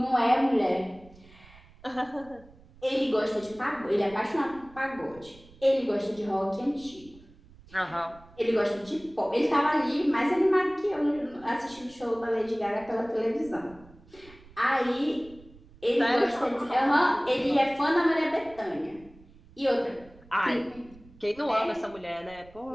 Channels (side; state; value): right; noise; rumble, 24 dB below the sound